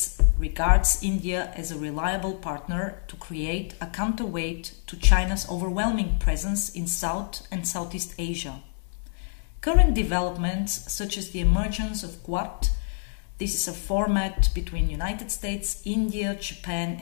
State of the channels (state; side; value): silent; right; digital silence